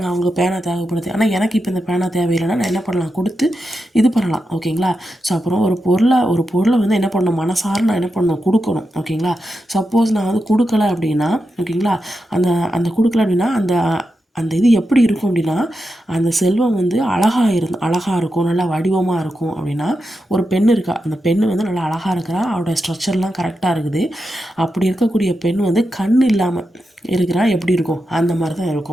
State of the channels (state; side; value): normal; both; correlation 0.88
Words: அவங்க பேனா தேவைப்படுது, ஆனால் எனக்கு இப்போ இந்த பேனா தேவையில்லைன்னா நான் என்ன பண்ணலாம், கொடுத்து இது பண்ணலாம். ஓகேங்களா. ஸோ அப்புறம் ஒரு பொருளை வந்து என்ன பண்ணணும், மனசார நான் என்ன பண்ணணும், கொடுக்கணும். ஓகேங்களா. சப்போஸ் நான் வந்து கொடுக்கல அப்படின்னா, ஓகேங்களா, அந்த கொடுக்கல அப்படின்னா அந்த இது எப்படி இருக்கும் அப்படின்னா, அந்த செல்வம் வந்து அழகாக இருக்கும், நல்லா வடிவமாக இருக்கும். அப்படின்னா ஒரு பெண் இருக்கா, அந்த பெண் வந்து நல்லா அழகாக இருக்கிறா, அவரோட ஸ்ட்ரக்சர்லாம் கரெக்டாக இருக்குது. அப்படி இருக்கக்கூடிய பெண் வந்து கண் இல்லாமல் இருக்கிறா, எப்படி இருக்கும், அந்த மாதிரி தான்